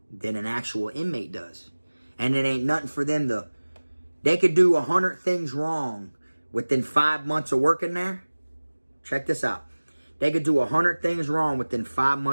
than an actual inmate does. And it ain't nothing for them to... They could do 100 things wrong within 5 months of working there. Check this out. They could do 100 things wrong within 5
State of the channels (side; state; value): both; inverted; correlation -1.00